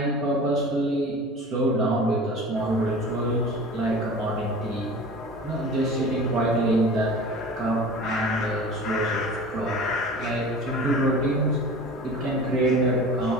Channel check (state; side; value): normal; both; correlation 0.38